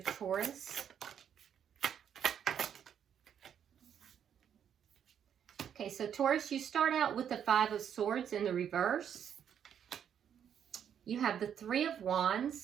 Taurus. Okay, so Taurus, you start out with the Five of Swords in the reverse. You have the Three of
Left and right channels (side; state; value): left; quieter; 8.7 dB